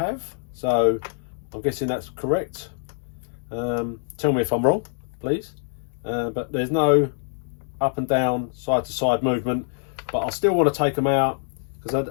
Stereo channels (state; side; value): silent; right; digital silence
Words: so I'm guessing that's correct. Tell me if I'm wrong, please. But there's no up and down, side to side movement, but I still want to take them out because